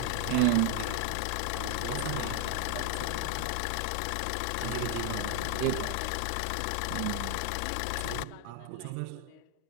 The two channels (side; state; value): both; different; correlation 0.00